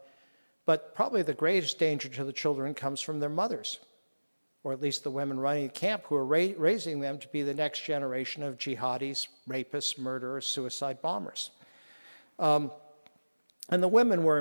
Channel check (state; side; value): inverted; both; correlation -1.00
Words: probably the greatest danger to the children comes from their mothers, or at least the women running the camp who are raising them to be the next generation of jihadis, rapists, murderers, suicide bombers. And the women were